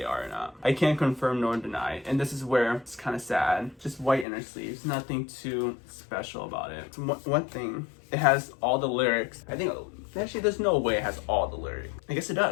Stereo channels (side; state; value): right; drops out; at 4.2 s